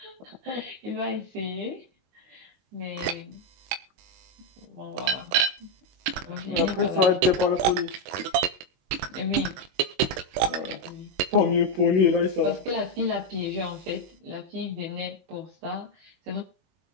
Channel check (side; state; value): left; late; 22 ms